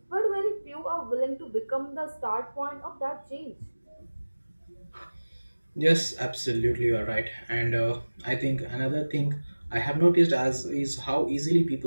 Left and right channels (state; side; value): inverted; both; correlation -1.00